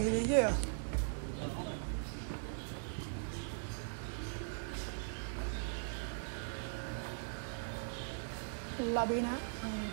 ah. Labi na ang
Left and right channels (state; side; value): silent; left; digital silence